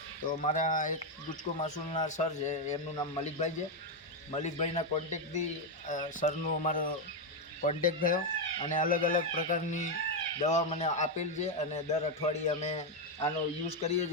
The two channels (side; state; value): both; normal; correlation 0.04